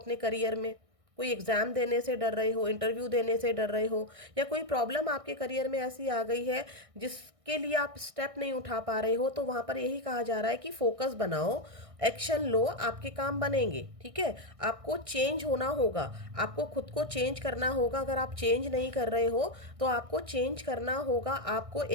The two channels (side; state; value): left; late; 1.6 ms